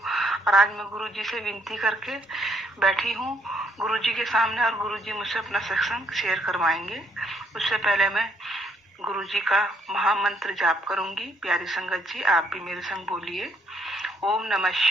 और आज मैं गुरुजी से विनती करके बैठी हूँ गुरुजी के सामने और गुरुजी मुझसे अपना सत्संग शेयर करवाएंगे। उससे पहले मैं गुरुजी का महामंत्र जाप करूंगी। प्यारी संगत जी, आप भी मेरे संग बोलिए। ओम नमः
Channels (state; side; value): normal; both; correlation 0.70